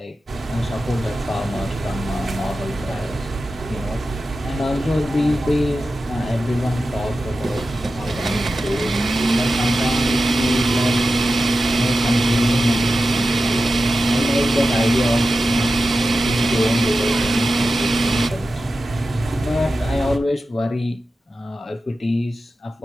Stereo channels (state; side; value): normal; both; correlation 0.92